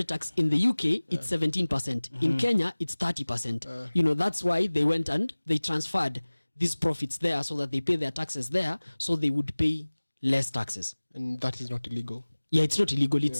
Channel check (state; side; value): inverted; both; correlation -1.00